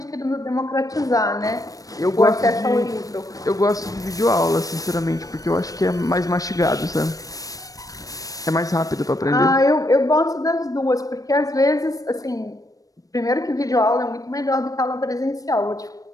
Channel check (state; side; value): late; right; 0.17 ms